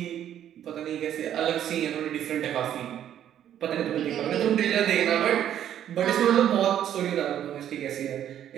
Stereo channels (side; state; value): left; quieter; 10.5 dB